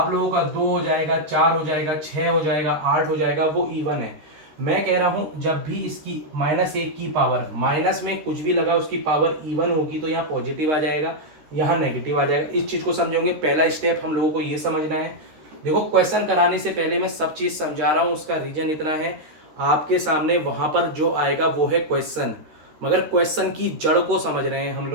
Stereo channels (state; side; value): late; left; 13 ms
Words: लोगों का, 2 हो जाएगा, 4 हो जाएगा, 6 हो जाएगा, 8 हो जाएगा, वो इवन है। मैं कह रहा हूं जब भी इसकी -1 की पावर, माइनस में कुछ भी लगा उसकी पावर इवन होगी तो यहाँ पॉजिटिव आ जाएगा, यहाँ नेगेटिव आ जाएगा। इस चीज को समझोगे, पहला स्टेप हम लोगों को ये समझना है। देखो क्वेश्चन कराने से पहले मैं सब चीज समझा रहा हूं, उसका रीजन इतना है, आपके सामने वहां पर जो आएगा वो है क्वेश्चन, मगर क्वेश्चन की जड़ को समझ रहे हैं हम